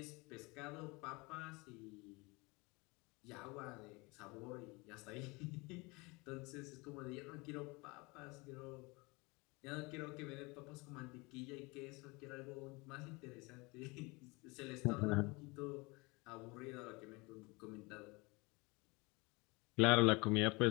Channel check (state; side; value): quieter; right; 26.1 dB